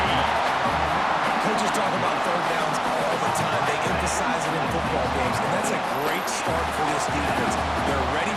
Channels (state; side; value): identical; both; correlation 1.00